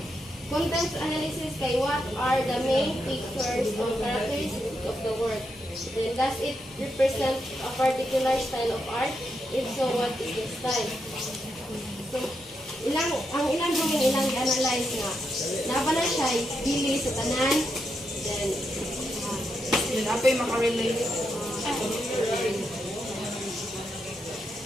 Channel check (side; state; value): both; normal; correlation 0.83